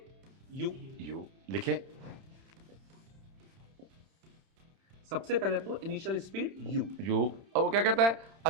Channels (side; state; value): left; late; 31 ms